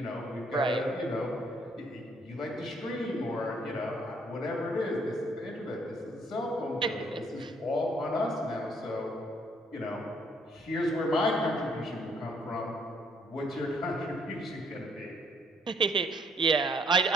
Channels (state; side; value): normal; both; correlation 0.66